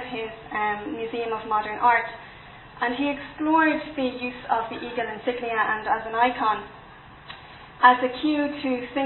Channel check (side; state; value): both; identical; correlation 1.00